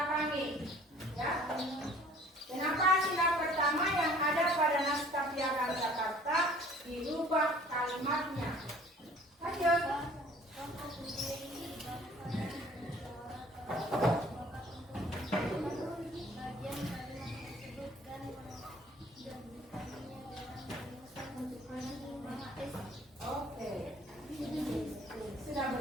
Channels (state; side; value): normal; both; correlation 0.52